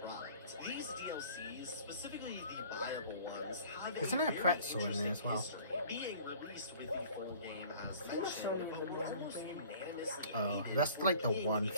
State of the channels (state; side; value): inverted; both; correlation -0.49